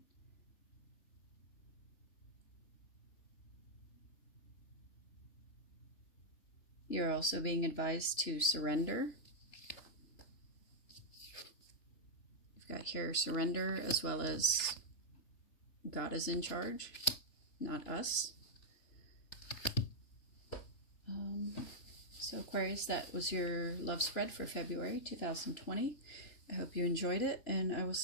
You're also being advised to surrender. You've got here surrender, as well as God is in charge, not us. So Aquarius, that was your love spread for February 2020. I hope you enjoyed it, and I will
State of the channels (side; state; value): right; late; 3.4 ms